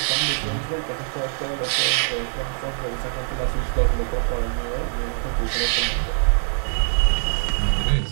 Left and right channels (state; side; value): silent; left; 63 dB below the other